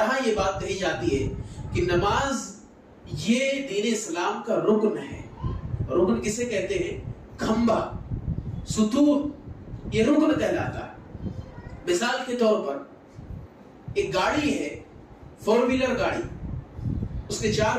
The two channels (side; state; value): both; identical; correlation 1.00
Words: یہ بات کہی جاتی ہے کہ نماز یہ دین اسلام کا رکن ہے۔ رکن کسے کہتے ہیں؟ کھمبا، ستون، یہ رکن کہلاتا ہے۔ مثال کے طور پر ایک گاڑی ہے، 4 ویلر گاڑی، اس کے